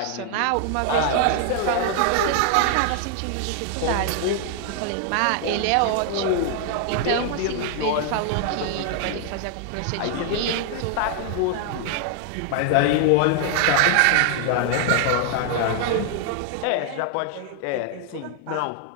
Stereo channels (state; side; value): different; both; correlation 0.00